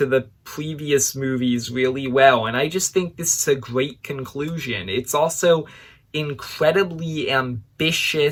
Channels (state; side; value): identical; both; correlation 1.00